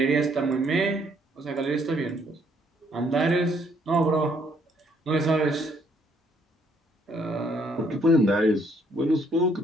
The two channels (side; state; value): both; normal; correlation 0.67